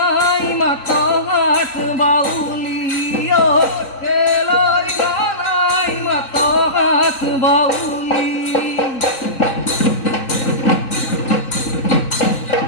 মাতা হাত বাউলি ও কেলই ঘনাই মাতা হাত বাউলি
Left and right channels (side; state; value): right; late; 3.8 ms